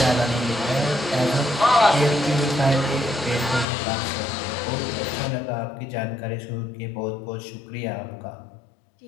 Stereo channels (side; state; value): right; drops out; at 3.7 s